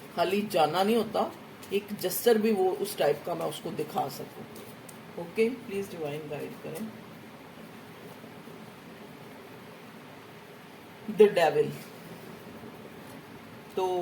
खाली जाना नहीं होता, एक जेस्चर भी वो उस टाइप का मैं उसको दिखा सकूं। ओके, प्लीज डिवाइन गाइड करें। द डेविल, तो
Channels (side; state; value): both; identical; correlation 1.00